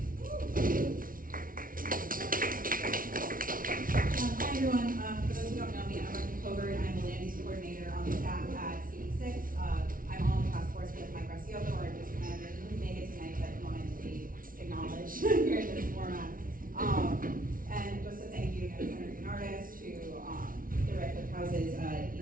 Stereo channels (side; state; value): left; late; 0.40 ms